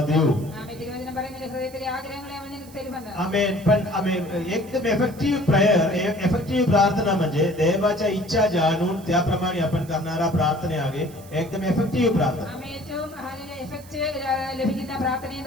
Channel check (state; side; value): noise; right; hiss, 22 dB below the sound